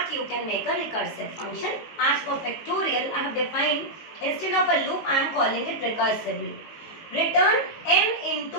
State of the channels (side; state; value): right; late; 19 ms